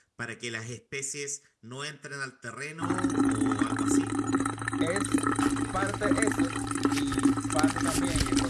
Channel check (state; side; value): identical; both; correlation 1.00